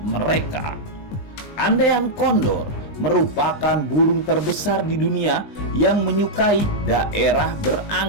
Andean Condor merupakan burung terbesar di dunia yang menyukai daerah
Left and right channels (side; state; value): right; late; 20 ms